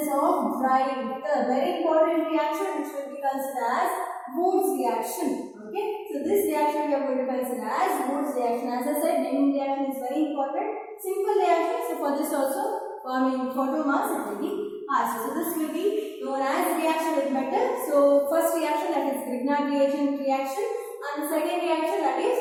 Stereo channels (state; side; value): identical; both; correlation 1.00